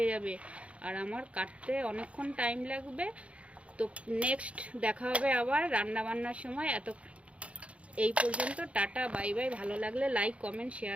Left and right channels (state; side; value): late; left; 0.062 ms